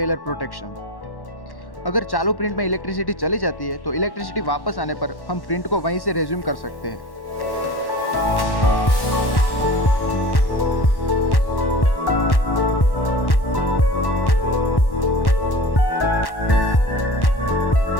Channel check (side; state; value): right; late; 1.1 ms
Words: प्रोटेक्शन। अगर चालू प्रिंट में इलेक्ट्रिसिटी चली जाती है तो इलेक्ट्रिसिटी वापस आने पर हम प्रिंट को वहीं से रेज्यूम कर सकते हैं।